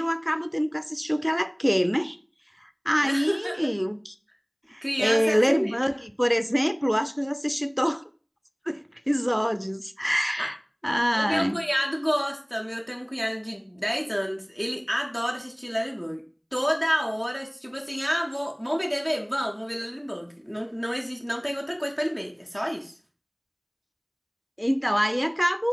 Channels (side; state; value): both; identical; correlation 1.00